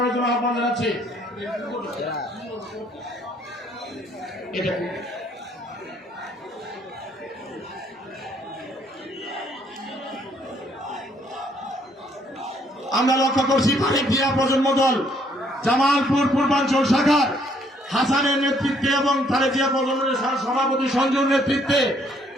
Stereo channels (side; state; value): both; normal; correlation 0.67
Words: জন্য আহ্বান জানাচ্ছি। আমরা লক্ষ্য করছি তারেক জিয়া প্রজন্ম দল জামালপুর পূর্বাঞ্চল শাখার হাসানের নেতৃত্বে এবং তারেক জিয়া প্রজন্মের সভাপতি সঞ্জুর নেতৃত্বে